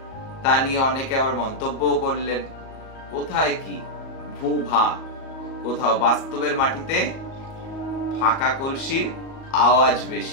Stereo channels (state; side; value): late; right; 37 ms